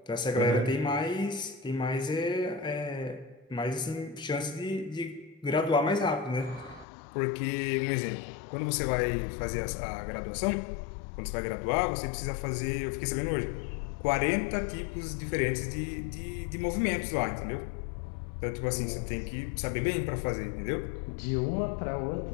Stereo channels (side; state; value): right; drops out; at 6.9 s